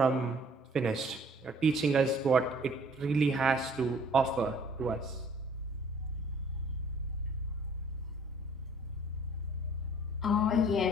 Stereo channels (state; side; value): normal; both; correlation 0.56